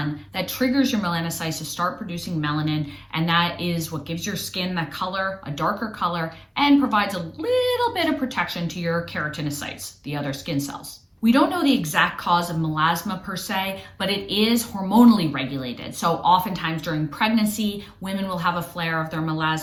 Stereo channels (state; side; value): identical; both; correlation 1.00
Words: that triggers your melanocytes to start producing melanin, and that is what gives your skin that color, a darker color, and provides a little bit of protection to your keratinocytes, the other skin cells. We don't know the exact cause of melasma per se, but it is hormonally regulated. So oftentimes during pregnancy, women will have a flare of their